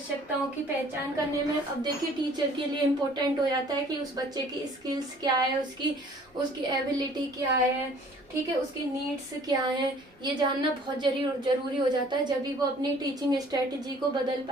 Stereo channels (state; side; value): normal; both; correlation 0.54